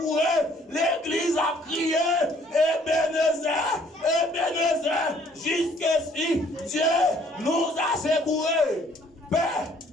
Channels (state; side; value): normal; both; correlation 0.61